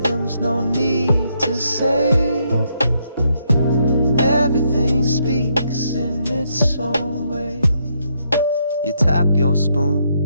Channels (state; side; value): inverted; both; correlation -0.75